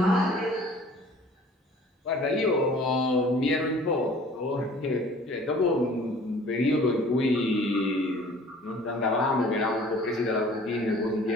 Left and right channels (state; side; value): normal; both; correlation 0.50